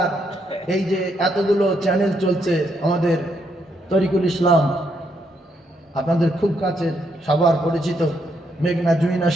এই যে এতগুলো চ্যানেল চলছে, আমাদের তরিকুল ইসলাম আপনাদের খুব কাছের সবার পরিচিত মেঘনা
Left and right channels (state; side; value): normal; both; correlation 0.76